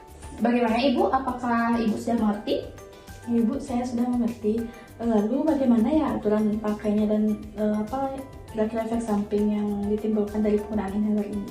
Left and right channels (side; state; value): both; identical; correlation 1.00